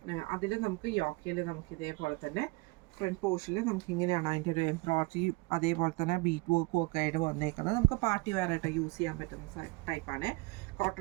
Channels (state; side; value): quieter; left; 25.6 dB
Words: അതിൽ നമുക്ക് യോക്കയിൽ നമുക്ക് ഇതേപോലെ തന്നെ ഫ്രണ്ട് പോർഷനിൽ നമുക്ക് ഇങ്ങനെയാണ് അതിൻ്റെ ഒരു എംബ്രോയിഡറി അതേപോലെ തന്നെ ബീറ്റ് വർക്കും ഒക്കെ ആയിട്ട് വന്നേക്കുന്നത്. നമുക്ക് പാർട്ടി വെയർ ആയിട്ട് യൂസ് ചെയ്യാൻ പറ്റുന്ന ടൈപ്പാണ്.